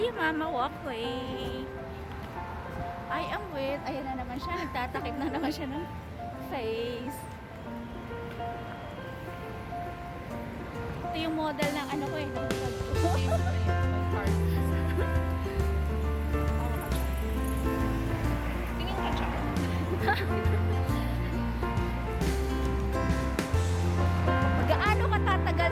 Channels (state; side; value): identical; both; correlation 1.00